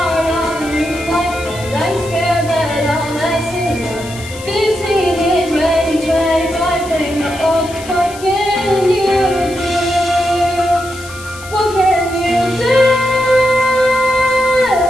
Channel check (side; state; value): left; noise; hiss, 16 dB below the sound